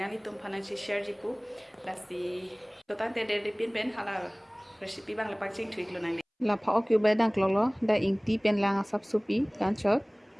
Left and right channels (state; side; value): identical; both; correlation 1.00